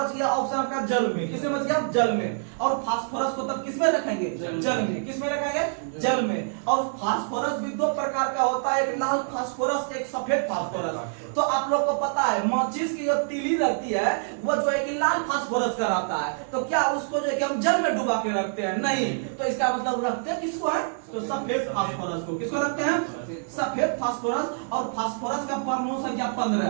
गया ऑप्शन आपका जल में, किसमें बच गया, जल में। और फास्फोरस को तब किसमें रखेंगे, जल में, किसमें रखेंगे, जल में। और फास्फोरस भी 2 प्रकार का होता है, एक लाल फास्फोरस, एक सफेद फास्फोरस। तो आप लोग को पता है माचिस की जो तीली रहती है वो जो है कि लाल फास्फोरस का रहता है, तो क्या उसको जो है कि हम जल में डुबा के रखते हैं, नहीं, तो इसका मतलब रखते हैं किसको है, तो सफेद फास्फोरस को, किसको रखते हैं, सफेद फास्फोरस। और फास्फोरस का परमाणु संख्या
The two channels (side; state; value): left; silent; 61 dB below the other